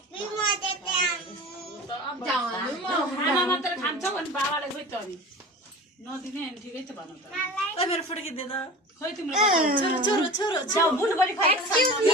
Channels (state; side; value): normal; both; correlation 0.36